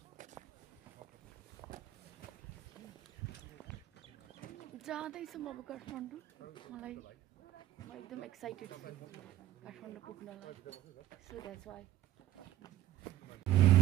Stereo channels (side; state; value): left; quieter; 13.7 dB